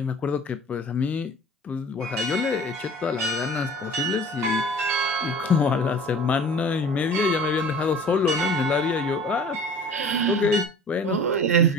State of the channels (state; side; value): normal; both; correlation 0.45